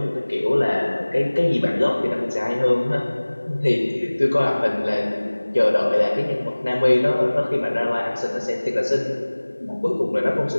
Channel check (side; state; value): both; inverted; correlation -1.00